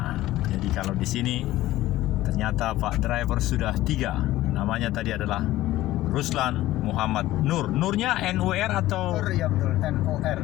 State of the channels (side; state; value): right; quieter; 15.8 dB